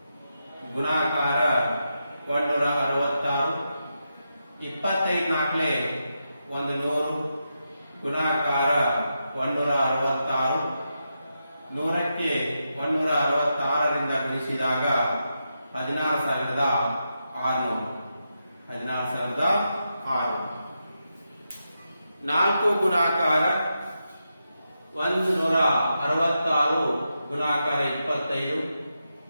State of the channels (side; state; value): both; inverted; correlation -0.86